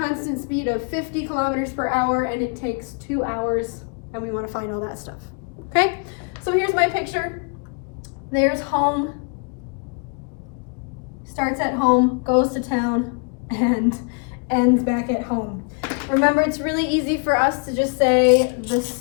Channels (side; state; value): right; quieter; 37.3 dB